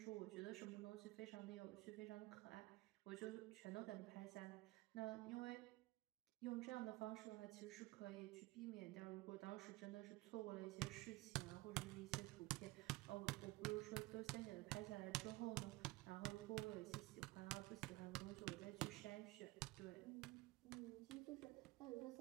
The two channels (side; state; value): left; quieter; 20.1 dB